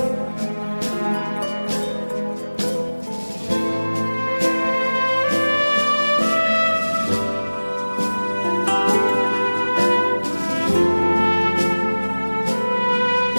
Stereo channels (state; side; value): inverted; both; correlation -1.00